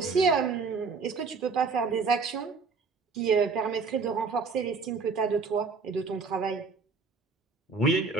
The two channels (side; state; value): left; quieter; 4.7 dB